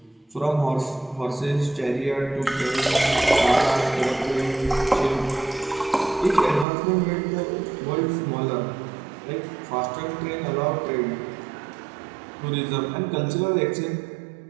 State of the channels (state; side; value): drops out; left; at 6.7 s